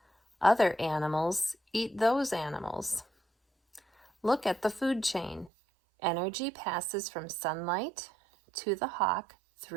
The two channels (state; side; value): drops out; left; at 5.5 s